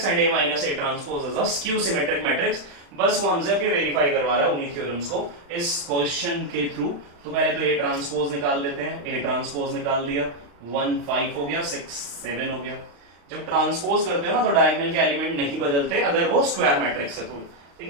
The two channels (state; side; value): late; left; 35 ms